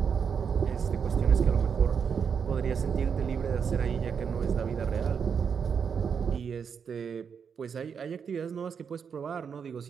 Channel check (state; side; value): quieter; left; 6.7 dB